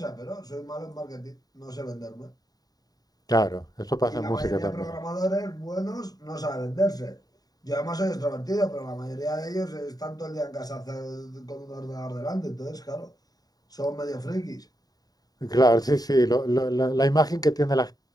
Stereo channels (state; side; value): late; right; 0.18 ms